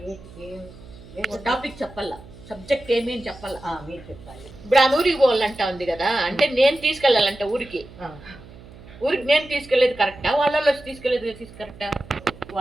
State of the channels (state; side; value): noise; right; hum, 19 dB below the sound